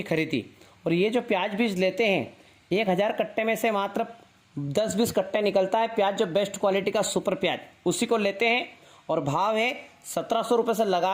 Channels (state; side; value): identical; both; correlation 1.00